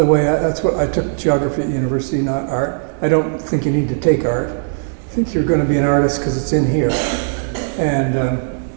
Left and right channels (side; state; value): left; silent; digital silence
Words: way, that's what I took, geography at university, not art. I don't think you need to take art. I think you're going to be an artist because it's in here. And